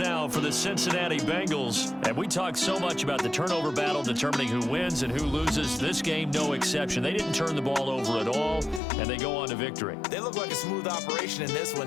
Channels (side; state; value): right; drops out; at 8.8 s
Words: now for the Cincinnati Bengals. And we talk so much about the turnover battle determining who wins and who loses. This game, no exception. They didn't turn the ball over at all, and they go on to victory. They look like a smooth operation in this